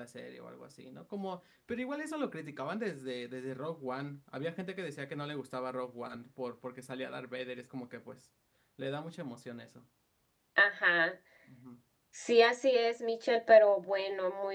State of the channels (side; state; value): both; identical; correlation 1.00